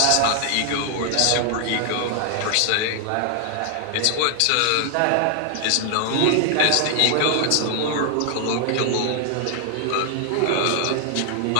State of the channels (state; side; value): different; both; correlation 0.00